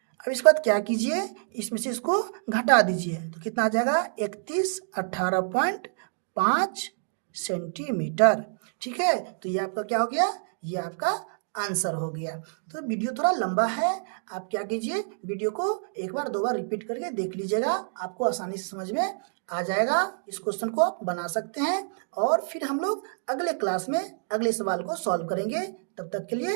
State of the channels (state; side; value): silent; left; digital silence